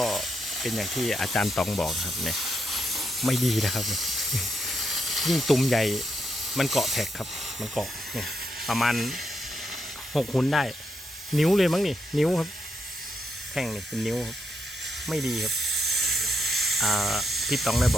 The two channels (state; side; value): normal; both; correlation 0.80